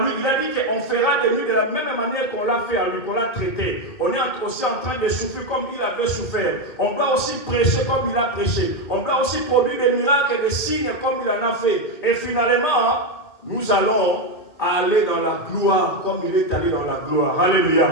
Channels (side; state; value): right; late; 2.2 ms